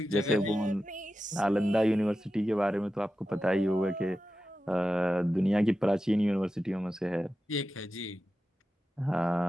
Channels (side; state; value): both; normal; correlation 0.92